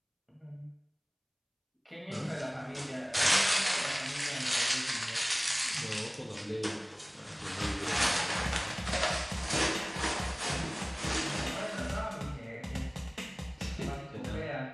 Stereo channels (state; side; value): identical; both; correlation 1.00